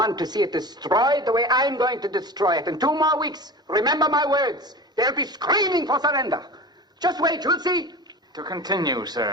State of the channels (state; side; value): normal; both; correlation 0.32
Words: to see it destroyed the way I'm going to destroy it. In 2 more weeks, remember my words, they'll be screaming for surrender. Just wait, you'll see. To continue,